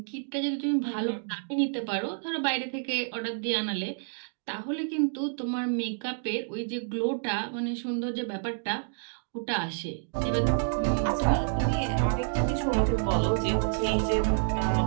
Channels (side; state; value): left; silent; digital silence